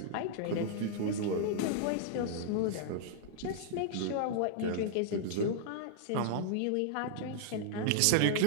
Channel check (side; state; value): both; different; correlation -0.01